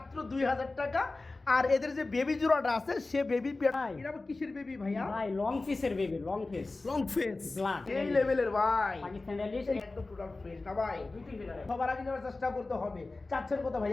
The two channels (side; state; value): right; quieter; 3.3 dB